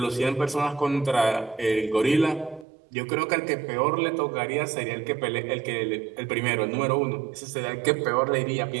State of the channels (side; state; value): left; drops out; at 2.7 s